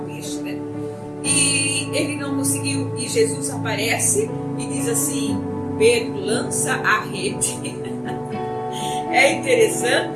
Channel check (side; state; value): both; identical; correlation 1.00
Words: peixe, né? E ele não conseguiu, e Jesus aparece e diz assim: Pedro, lança a rede. É